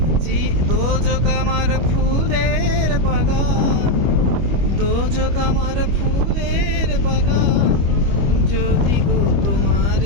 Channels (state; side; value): late; left; 25 ms